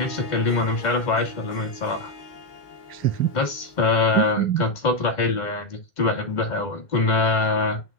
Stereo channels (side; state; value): right; late; 2.2 ms